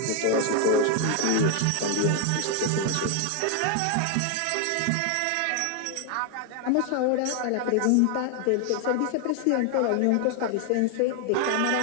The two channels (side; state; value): both; different; correlation 0.00